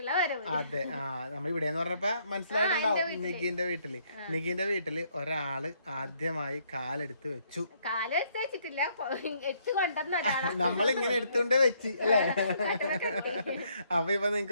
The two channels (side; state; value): both; inverted; correlation -0.69